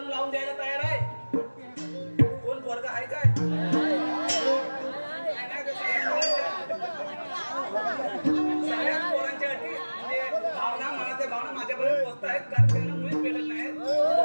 लावून द्यायला तयार आहे. कोण वर्ग आहे काय? सगळ्यात पोरांच्या अटी भावना मनाच्या भावना माझ्यापर्यंत पोहोचत आहेत, कारण त्यांना मुळीच भेटत नाहीत.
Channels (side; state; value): both; inverted; correlation -1.00